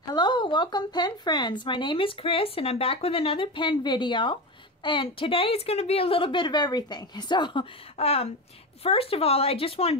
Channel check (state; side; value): normal; both; correlation 0.20